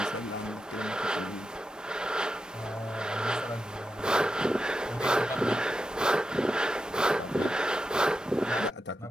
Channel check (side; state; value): both; normal; correlation 0.87